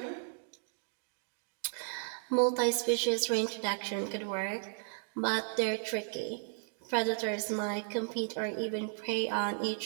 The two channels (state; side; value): silent; left; digital silence